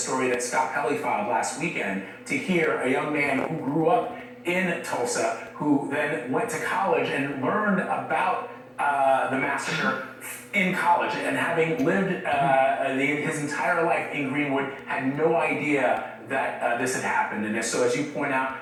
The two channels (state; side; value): identical; both; correlation 1.00